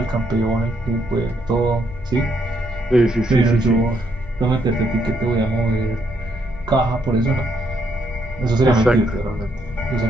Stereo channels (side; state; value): right; noise; hum, 21 dB below the sound